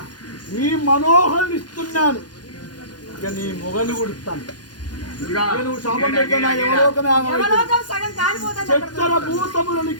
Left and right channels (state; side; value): late; right; 0.70 ms